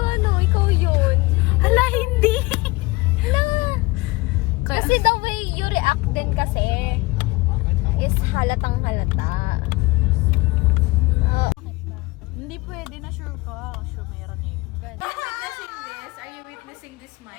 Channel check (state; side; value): quieter; right; 22.4 dB